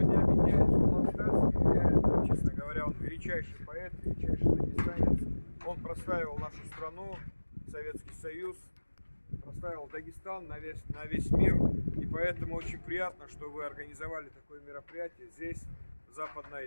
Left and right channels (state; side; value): inverted; both; correlation -1.00